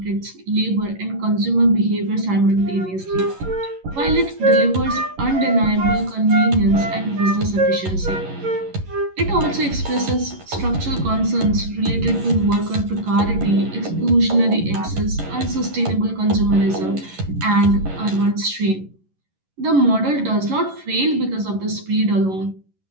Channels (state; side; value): late; left; 11 ms